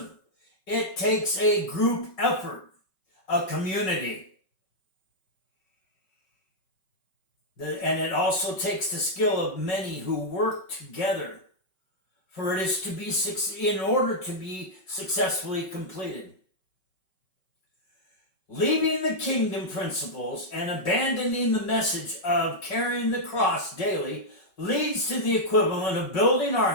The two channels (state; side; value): late; right; 5.3 ms